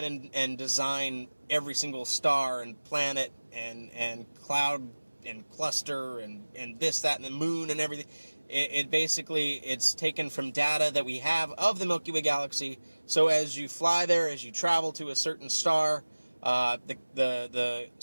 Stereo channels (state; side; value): inverted; both; correlation -1.00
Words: and design every single star and planet and cloud and cluster and this, that, and the moon and everything. It basically, it's taken from data that we have of the Milky Way Galaxy. So as you fly there, as you travel to a certain star, the